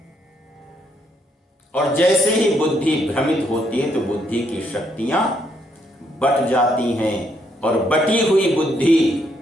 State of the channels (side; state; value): both; normal; correlation 0.73